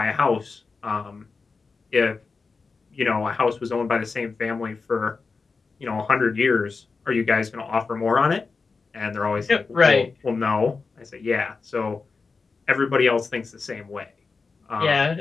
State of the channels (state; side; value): quieter; right; 4.5 dB